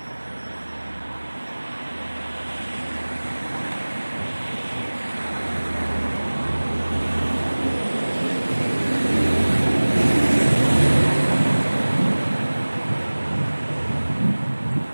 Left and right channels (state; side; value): inverted; both; correlation -1.00